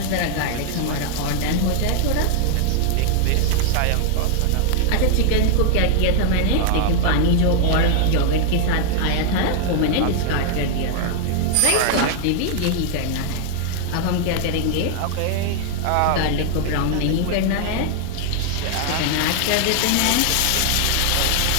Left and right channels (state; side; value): different; both; correlation 0.00